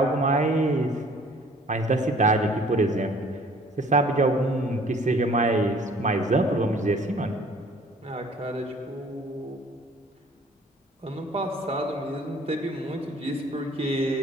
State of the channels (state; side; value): normal; both; correlation 0.54